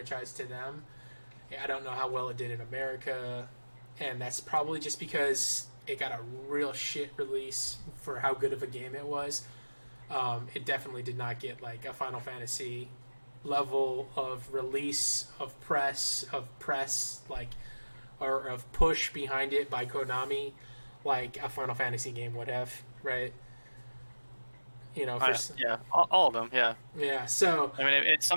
to them. I don't know how well it did in America, and that's probably just because it got a real shit release for how good of a game it was. It definitely did not get like a Final Fantasy level of release of press like or of push behind it by Konami. Like a Final Fantasy game would have, right? yeah, all of them, yeah. Yeah, so I mean, it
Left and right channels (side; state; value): both; inverted; correlation -1.00